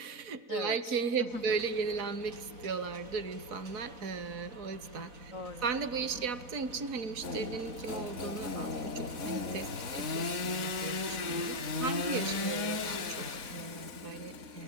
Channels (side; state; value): left; late; 4.0 ms